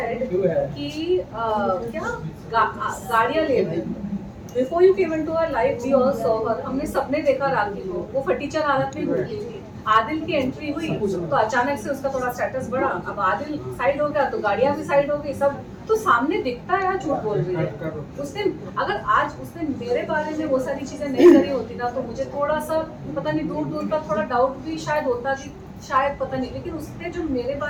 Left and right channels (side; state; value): both; identical; correlation 1.00